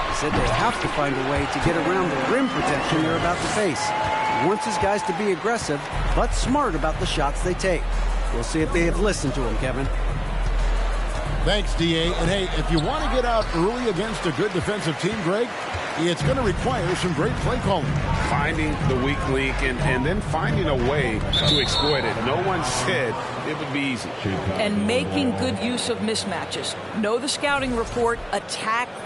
He said they have to find a way to get around the rim protection they're about to face. He wants his guys to be aggressive, but smart about the shots they take. We'll see if they have listened to him, Kevin. Thanks, D.A. And, hey, if you want to get out early against a good defensive team, Greg, it's going to require some great play calling. Finding the weak link and then finding a way to exploit it. No one said it would be easy. And making good use of mismatches. Know the scouting report. Attack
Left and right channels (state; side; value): identical; both; correlation 1.00